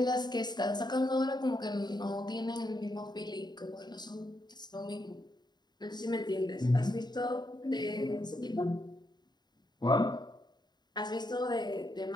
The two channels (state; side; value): late; right; 0.21 ms